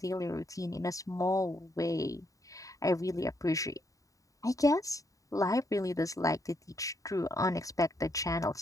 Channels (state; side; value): late; right; 0.16 ms